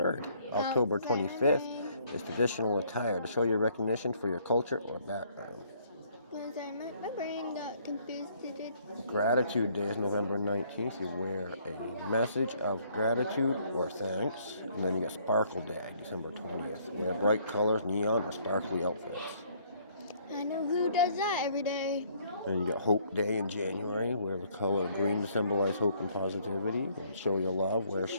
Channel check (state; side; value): inverted; both; correlation -0.64